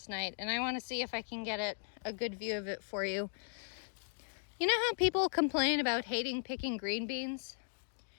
night, and I want to see if I can get a good view of it for you. You know how people complain about hating picking green beans?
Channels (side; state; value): right; silent; digital silence